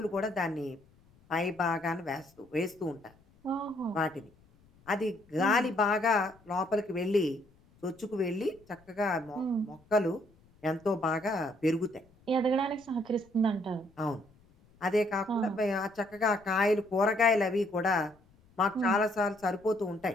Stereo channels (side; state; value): left; noise; rumble, 30 dB below the sound